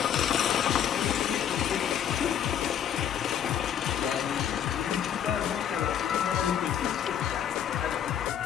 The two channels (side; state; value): right; quieter; 9.4 dB